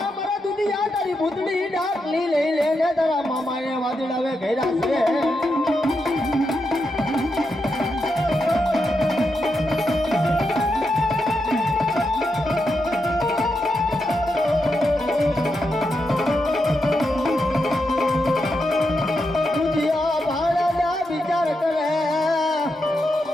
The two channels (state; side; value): normal; both; correlation 0.85